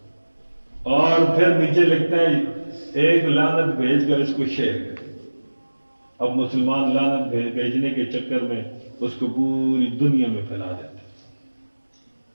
اور پھر نیچے لکھتا ہے ایک لعنت بھیج کر اس کو شیئر کر. اب مسلمان لعنت بھیجنے کے چکر میں اس کو پوری دنیا میں پھیلا دیتے.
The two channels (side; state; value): both; inverted; correlation -1.00